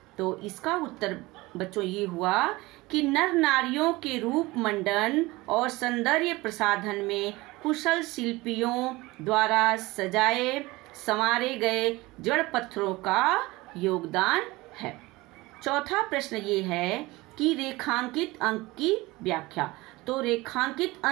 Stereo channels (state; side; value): quieter; left; 21.0 dB